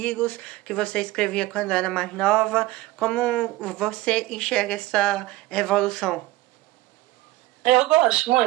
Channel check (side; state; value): left; quieter; 17.8 dB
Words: que você escrevia quando era mais nova, como você enxerga essa evolução? Eu gosto